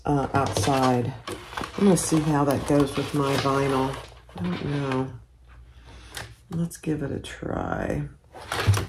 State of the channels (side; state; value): both; identical; correlation 1.00